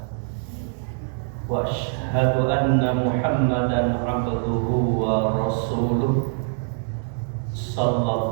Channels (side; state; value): left; silent; 63 dB below the other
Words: Wa asyhadu anna Muhammadan 'abduhu wa rasuluh.